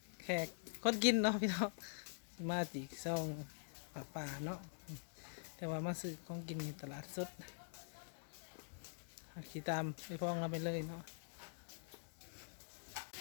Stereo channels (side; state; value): right; silent; digital silence